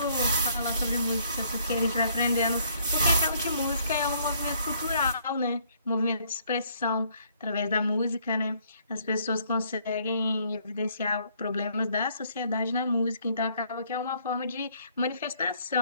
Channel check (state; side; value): inverted; both; correlation -0.66